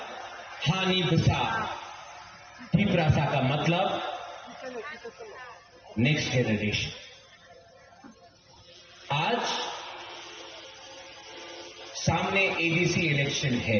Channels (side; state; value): both; identical; correlation 1.00